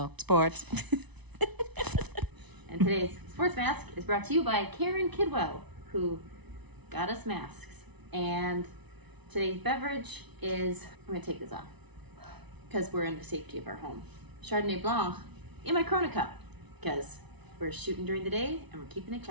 Sports. And today's sports mask is brought to you by Karen Kidwell, who got us masks. And today's beverage is, I'm going to take this off because we're in the safety of our home. Chardonnay Blanc in my Corona cup because we're shooting during the day and we're keeping it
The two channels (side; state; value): left; late; 0.99 ms